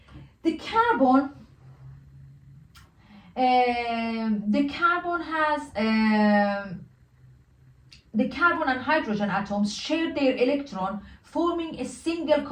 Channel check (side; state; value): both; identical; correlation 1.00